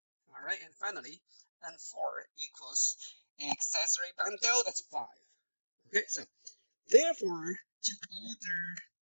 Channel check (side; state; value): both; inverted; correlation -1.00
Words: All right, and finally, N4 equals accessory bundle, that's 5. Okay, so therefore, to order